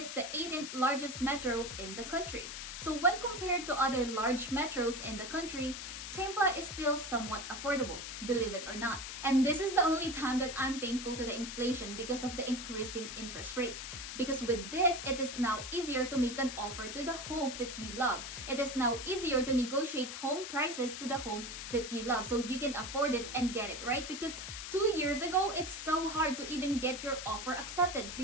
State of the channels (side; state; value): left; noise; hiss, 7 dB below the sound